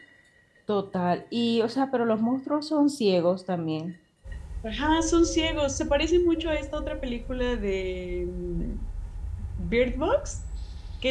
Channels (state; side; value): identical; both; correlation 1.00